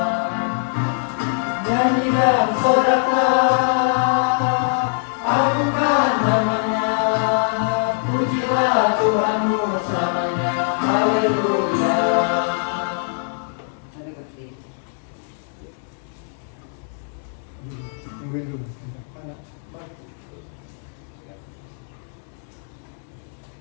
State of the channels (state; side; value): silent; right; digital silence